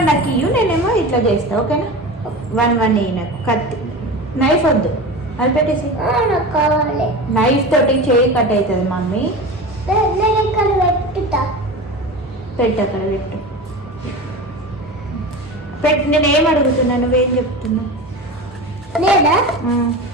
నాకు ఇయ్యు, నేనేమో ఇట్లా చేస్తా. ఓకేనా? 1 ఇయ్యి నాకు. కత్తి నైఫ్ వద్దు, అది పెట్టేసి. కావాలి. నైఫ్ తోటి చేయి కట్ అవుతుంది మమ్మీ. పెట్టు అక్కడ పెట్టు. నేనేం అడుగుతున్నా, నువ్వేం చెప్తున్నావు?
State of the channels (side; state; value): both; normal; correlation 0.29